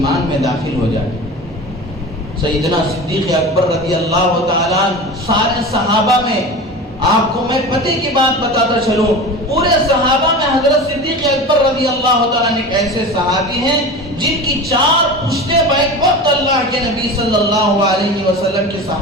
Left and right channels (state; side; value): normal; both; correlation 0.31